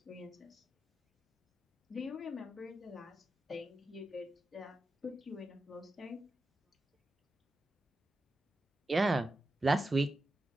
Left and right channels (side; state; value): both; normal; correlation 0.90